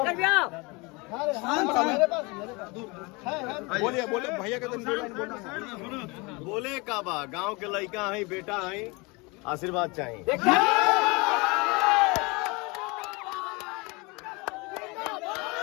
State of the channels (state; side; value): quieter; right; 26.8 dB